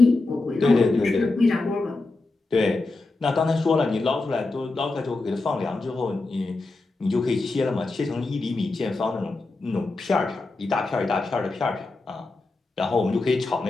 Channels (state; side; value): quieter; right; 3.3 dB